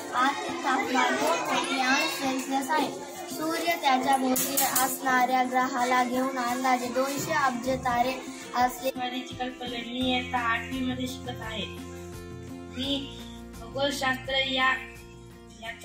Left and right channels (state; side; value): identical; both; correlation 1.00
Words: आतील तापमान 2 कोटी अंश सेल्सिअस आहे। सूर्य त्याच्या भोवती असणाऱ्या ग्रहाला घेऊन अंदाजे 200 अब्ज तारे असले। मी आता 8वी मध्ये शिकत आहे। मी खगोलशास्त्र